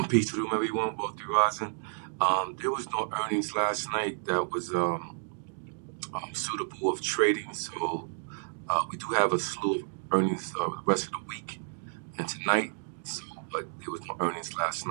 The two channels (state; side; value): silent; left; digital silence